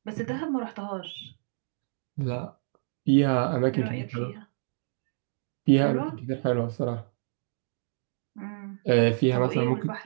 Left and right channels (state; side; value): silent; left; digital silence